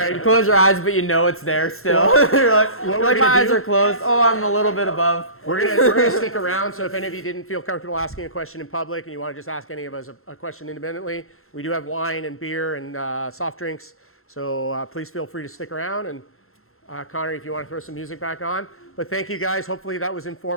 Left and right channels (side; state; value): right; late; 0.62 ms